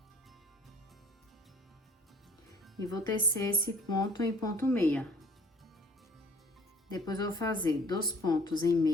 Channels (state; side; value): normal; both; correlation 0.54